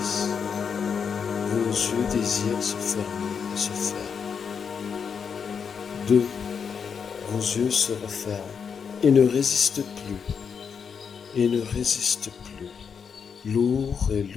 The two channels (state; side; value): quieter; right; 6.5 dB